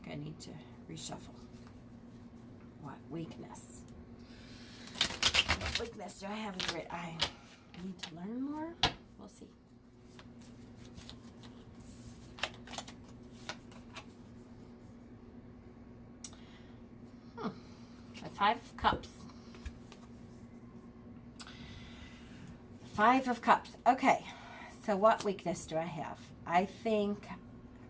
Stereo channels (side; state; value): both; identical; correlation 1.00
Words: I need to reshuffle. What weakness? What weakness do I have as a reader? I need to learn more. We'll see. The 5 of Cups. 5 of Cups. Okay, so what weakness do I have? I think